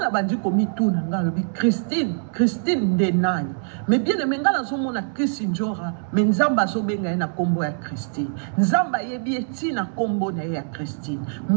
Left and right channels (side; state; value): left; silent; 63 dB below the other